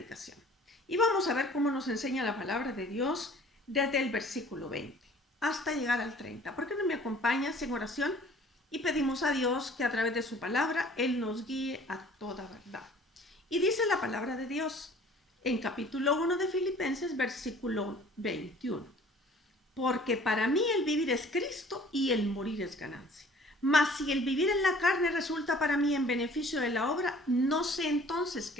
Y vamos a ver cómo nos enseña la palabra de Dios desde el versículo 20 hasta llegar al 30. ¿Por qué no me acompañas en oración? Y pedimos a Dios que a través de su palabra Él nos guíe a toda verdad. Y dice la palabra de Dios en capítulo 1 de Filipenses, versículo 21. Porque para mí el vivir es Cristo y el morir es ganancia. Mas si el vivir en la carne resulta para mí en beneficio de la obra, no sé entonces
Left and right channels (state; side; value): normal; both; correlation 0.52